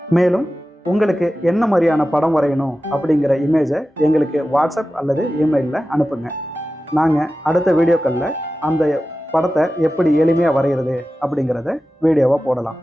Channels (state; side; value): normal; both; correlation 0.94